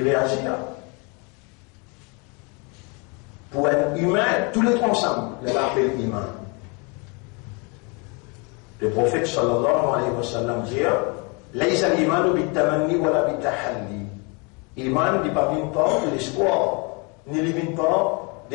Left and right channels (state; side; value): quieter; right; 32.1 dB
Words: réagit là. Pour un humain, tous les trois ensemble, il l'appelle humain. Le prophète sallallahu alayhi wa sallam dit Laïsa l'imanu bitamanni wa la bitahalli. Iman n'est pas venu par l'espoir, ni ne vient pas